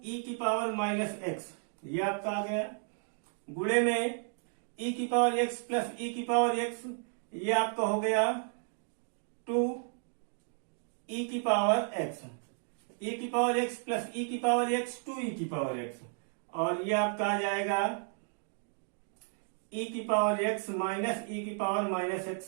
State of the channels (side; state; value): left; silent; 56 dB below the other